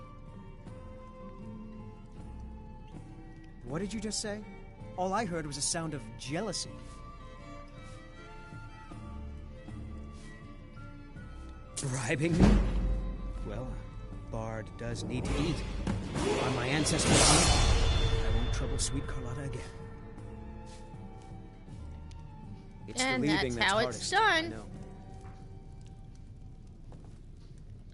What did you just say? All I heard was a sound of jealousy. Bribing me? Well, a bard does need to eat. On my ancestors' honor, I won't trouble sweet Carlotta again. It's And the leaving that's how hardest, it's done. I know.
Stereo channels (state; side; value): identical; both; correlation 1.00